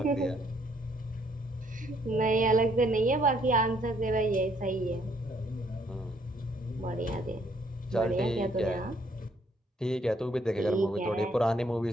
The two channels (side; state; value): both; normal; correlation 0.67